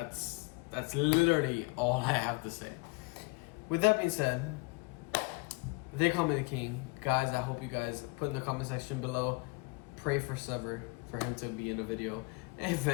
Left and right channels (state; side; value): quieter; right; 27.8 dB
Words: literally all I have to say. With that being said, they call me the king. Guys, I hope you guys put in the comment section below, pray for SEVER, for him to be in a video